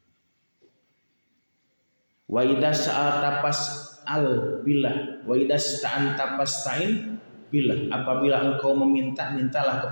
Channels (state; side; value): inverted; both; correlation -1.00